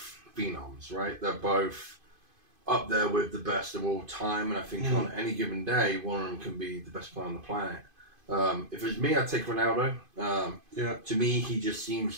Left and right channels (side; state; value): left; late; 2.5 ms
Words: phenoms, right? They're both up there with the best of all time, and I think on any given day, one of them can be the best player on the planet. If it was me, I'd take Ronaldo. To me, he just